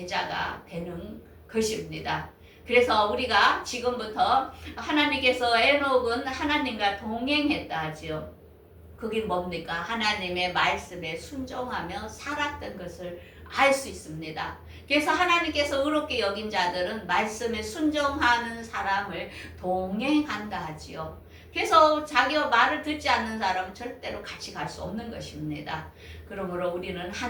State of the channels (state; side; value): identical; both; correlation 1.00